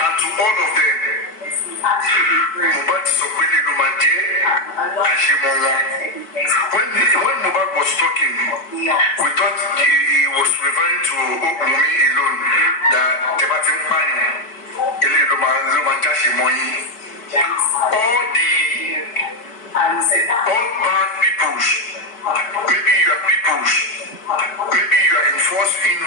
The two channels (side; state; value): right; late; 4.6 ms